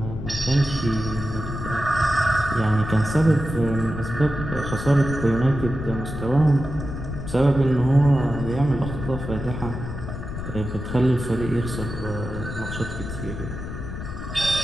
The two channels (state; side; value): noise; left; rumble, 7 dB below the sound